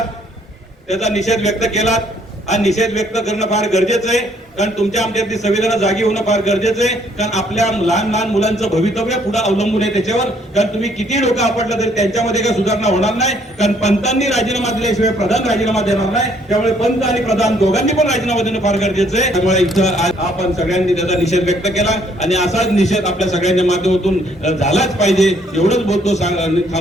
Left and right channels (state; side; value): normal; both; correlation 0.65